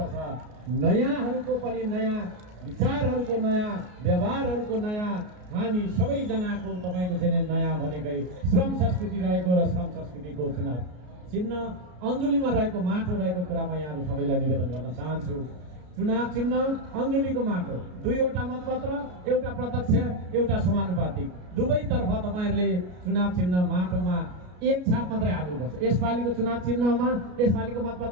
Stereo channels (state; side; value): late; left; 33 ms